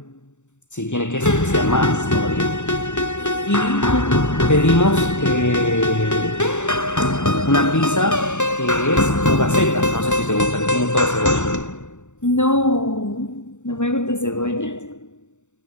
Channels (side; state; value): right; late; 0.84 ms